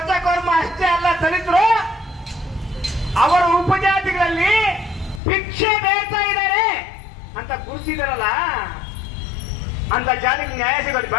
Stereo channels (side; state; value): right; drops out; at 5.2 s